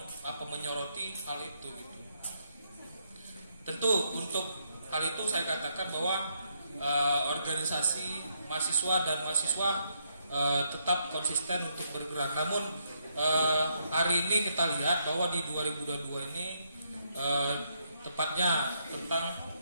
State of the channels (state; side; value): inverted; both; correlation -0.76